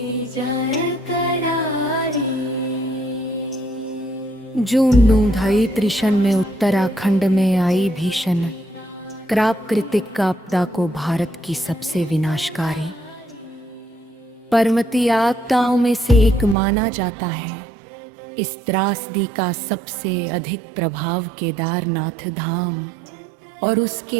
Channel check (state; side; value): drops out; left; at 16.6 s